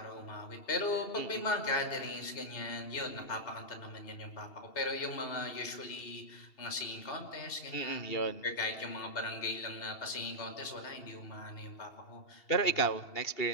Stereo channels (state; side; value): late; right; 2.7 ms